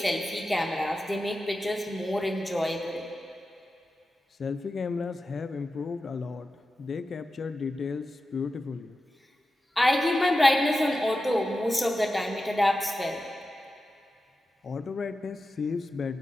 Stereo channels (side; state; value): both; normal; correlation 0.92